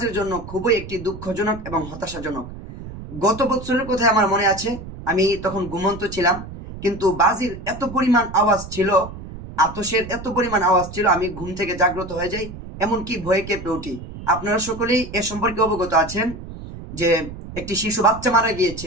জন্য খুবই একটি দুঃখজনক এবং হতাশাজনক। গত বছরের কথায় আমার মনে আছে, আমি তখন ঘুমন্ত ছিলাম, কিন্তু বাজির এত পরিমাণ আওয়াজ ছিল, আতশের এত পরিমাণ আওয়াজ ছিল, আমি ঘুম থেকে জাগ্রত হয়ে যাই, এমনকি ভয়ে কেঁপে উঠি। আপনারা সকলেই এ সম্পর্কে অবগত আছেন যে একটি শিশু বাচ্চা মারা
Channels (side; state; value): right; noise; rumble, 12 dB below the sound